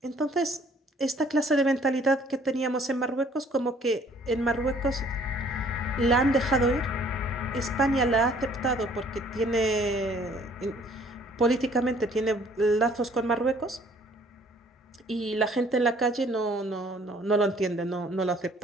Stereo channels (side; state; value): both; normal; correlation 0.58